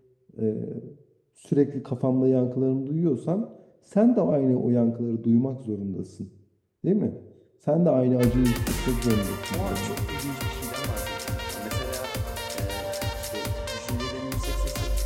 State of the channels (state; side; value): identical; both; correlation 1.00